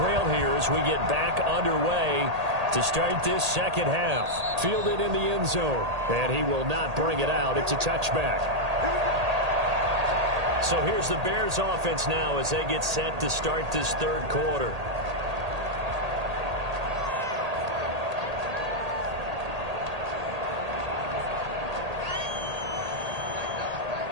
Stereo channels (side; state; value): left; late; 1.8 ms